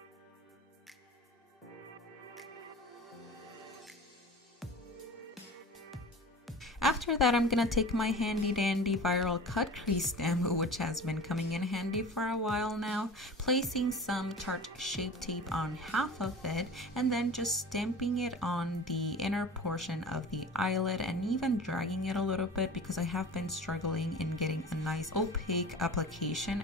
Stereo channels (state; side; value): normal; both; correlation 0.37